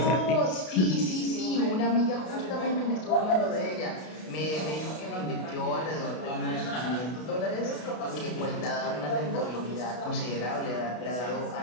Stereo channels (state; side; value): late; right; 32 ms